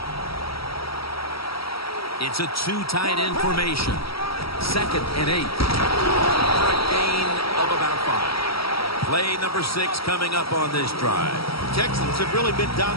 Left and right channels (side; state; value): right; late; 0.75 ms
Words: It's a 2 tight end formation. 2nd and 8. For a gain of about 5. Play number 6 coming up on this drive. Texans have really been